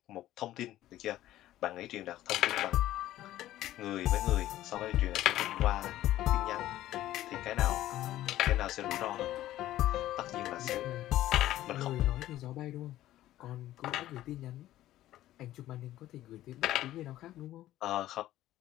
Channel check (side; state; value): right; quieter; 14.1 dB